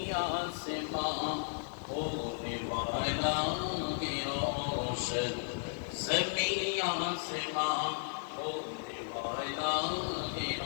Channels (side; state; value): right; silent; digital silence